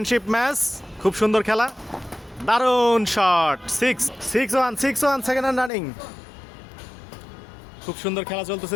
ম্যাচ, খুব সুন্দর খেলা, দারুণ শট। 6-1 সেকেন্ড হ্যান্ড রানিং, খুব সুন্দর খেলা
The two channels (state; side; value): drops out; right; at 5.7 s